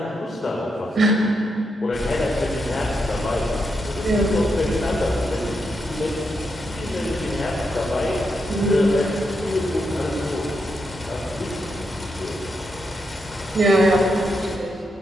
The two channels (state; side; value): normal; both; correlation 0.83